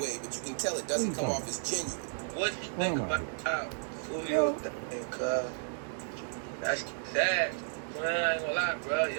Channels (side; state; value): left; silent; digital silence